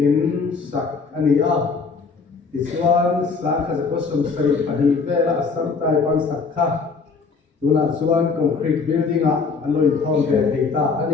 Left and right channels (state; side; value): quieter; right; 4.8 dB